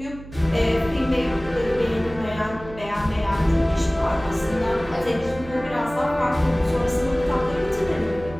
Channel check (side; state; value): right; noise; hum, 16 dB below the sound